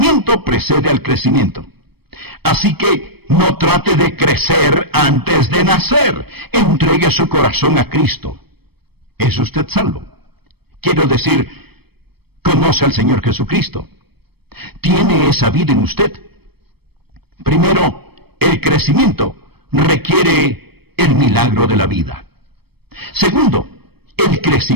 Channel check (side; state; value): left; late; 0.97 ms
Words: precede al crecimiento. Así que no trate de crecer antes de nacer. Entregue su corazón a Cristo. ¿Es usted salvo? Quiero decir, conoce al Señor Jesucristo. ¿Tiene esa vida en usted? Primero, el crecimiento requiere el milagro de la vida. Segundo, el